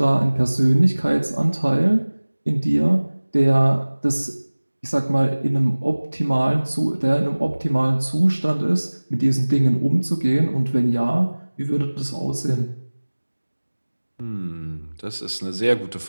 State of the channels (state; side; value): inverted; both; correlation -1.00